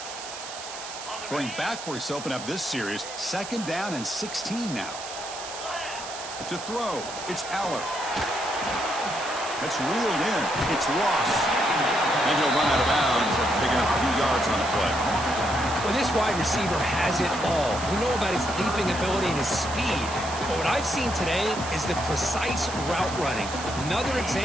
Going backwards to open up this series. Second down and 16 now. To throw, it's Aller. It's reeled in. It's Ross. And he'll run out of bounds after picking up a few yards on the play. Well, this wide receiver has it all. We know about his leaping ability and his speed. But what I've seen today is the precise route running. Another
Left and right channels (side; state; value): right; noise; hiss, 11 dB below the sound